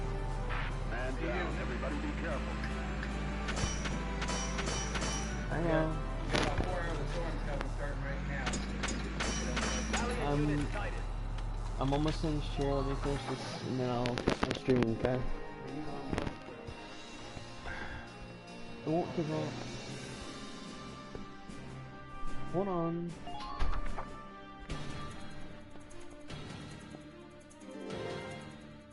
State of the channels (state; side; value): identical; both; correlation 1.00